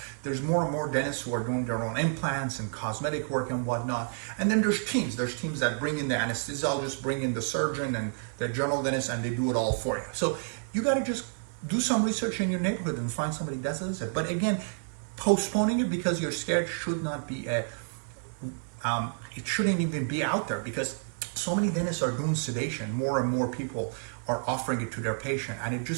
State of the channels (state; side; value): silent; left; 58 dB below the other